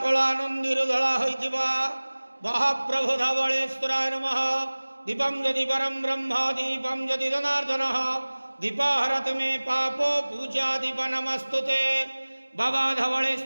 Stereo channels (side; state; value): both; inverted; correlation -1.00